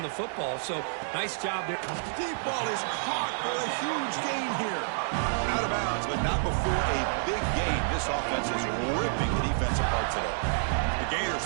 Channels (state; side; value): silent; left; 56 dB below the other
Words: the football. So, nice job there. Deep ball is caught for a huge gain here. Out of bounds, but not before a big gain. This offense is ripping the defense apart today. The Gators